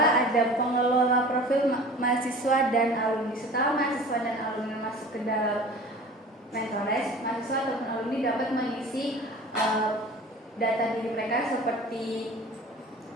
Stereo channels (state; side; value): normal; both; correlation 0.42